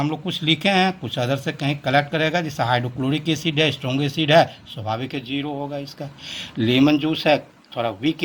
लोग कुछ लिखे हैं, कुछ अदर से कहीं कलेक्ट करेगा। जैसे हाइड्रोक्लोरिक एसिड है, स्ट्रॉन्ग एसिड है, स्वाभाविक है 0 होगा इसका। लेमन जूस है, थोड़ा वीक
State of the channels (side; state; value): both; identical; correlation 1.00